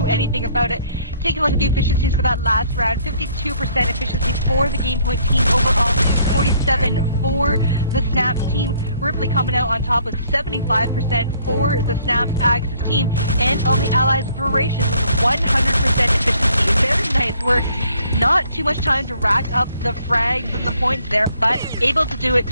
anything about it. Taking a look at the efficiencies for that last round, 52% efficiency for the Gamepoint team overall, 47 for the SnapS team. Ripley coming out on top with 75% for the SnapS Axis team, and on the Allies, Veracious with 100% efficiency. Very nice work. Not too much time to rack up the frags and the points there, but able to do it.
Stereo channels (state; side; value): inverted; both; correlation -0.63